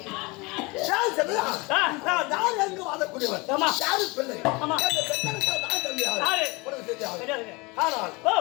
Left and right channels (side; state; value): right; quieter; 26.0 dB